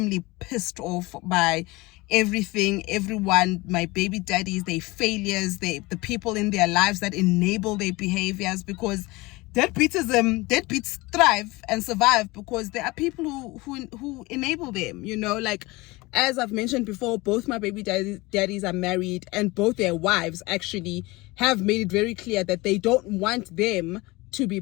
pissed off by everything, everyone, my baby daddies, their failures, the people in their lives that enable their behaviors, because deadbeats thrive and survive because there are people who enable them, you know. Like, as I've mentioned before, both my baby daddies are married, and both their wives actually have made it very clear that they don't want them to be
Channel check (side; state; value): right; quieter; 22.4 dB